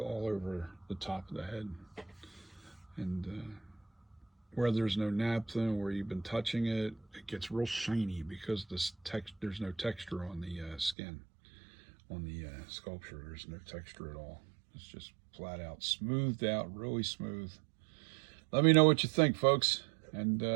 over the top of the head. And where there's no naphtha, where you've been touching it, it gets real shiny because there's no texture on the skin. On the sculpture, there's no texture at all. It's just flat out smoothed out, really smooth. Let me know what you think, folks, and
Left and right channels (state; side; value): drops out; left; at 11.0 s